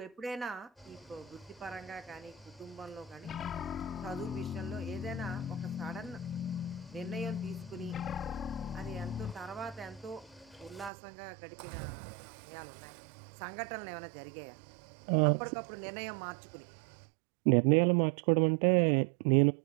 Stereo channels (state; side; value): drops out; left; at 10.9 s